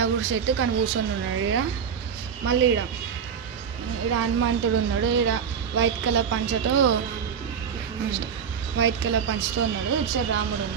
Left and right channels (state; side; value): quieter; left; 7.1 dB